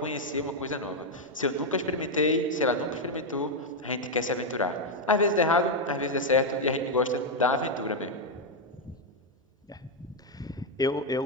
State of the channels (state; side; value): normal; both; correlation 0.02